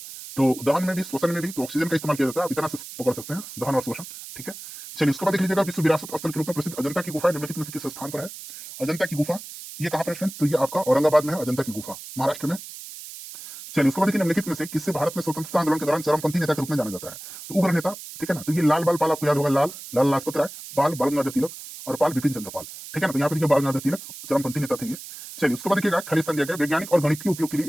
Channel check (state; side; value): noise; right; hiss, 13 dB below the sound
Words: तो दहन में भी श्वसन में भी तो ऑक्सीजन का इस्तेमाल किया जाता है, आप इतना से पकड़ सकते हैं, दहन और श्वसन, ठीक है। चलिए उसके बाद देख लीजिएगा विश्व विरासत स्थल के रूप में प्रसिद्ध अजंता की गुफा निम्नलिखित में से किस स्थान पर है, अजंता की गुफा ये कहां पर है फ्रेंड्स, तो ये आपका औरंगाबाद में है, अजंता की गुफा महाराष्ट्र में। चलिए उसके बाद देखिए निम्नलिखित में से किससे भारत में स्वतंत्रता आंदोलन के दौरान चरमपंथी नेता के रूप में जाना जाता है, तो उग्र नेता, ठीक है ना, तो ये लाल बाल पाल आपको याद होगा, लाल लाजपत राय, बाल बाल गंगाधर तिलक और पाल बिपिन चंद्र पाल, ठीक है ना, तो यहाँ पे देखिए बाल गंगाधर तिलक चरमपंथी नेता थे ये। चलिए उसके बाद देखिएगा खालिस्तान दिया गया वैज्ञानिक और गणितीय उपयोग के